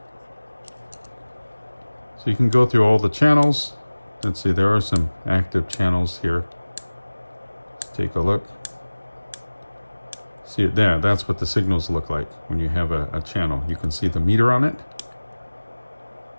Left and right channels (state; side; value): inverted; both; correlation -1.00